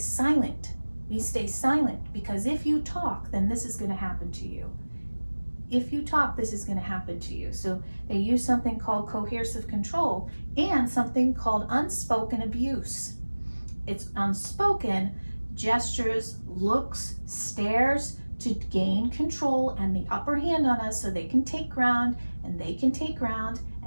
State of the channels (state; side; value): inverted; both; correlation -1.00